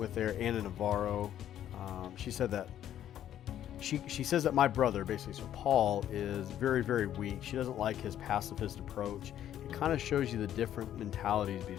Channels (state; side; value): quieter; right; 11.1 dB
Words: there, Anna Navarro, she said that she says that my brother, basically, so Paul, is very, very weak. She doesn't like his pacifist approach. It kind of shows you the different mentalities